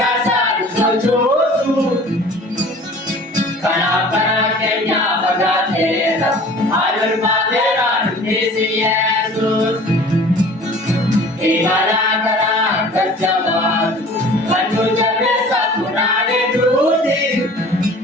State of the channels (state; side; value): normal; both; correlation 0.46